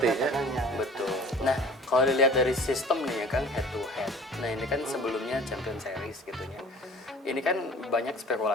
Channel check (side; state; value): both; normal; correlation 0.46